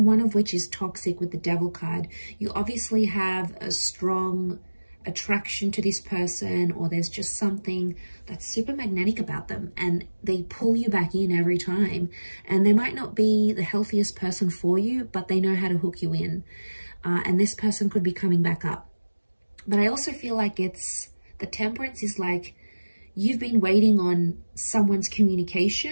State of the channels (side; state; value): both; inverted; correlation -1.00